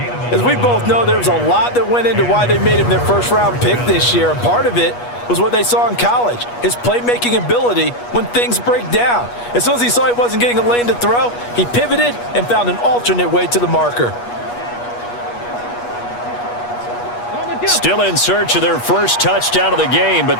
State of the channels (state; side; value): late; right; 8.3 ms